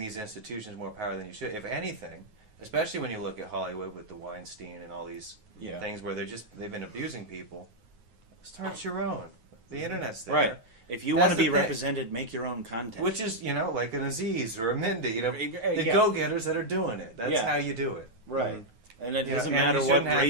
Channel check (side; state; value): left; late; 9.4 ms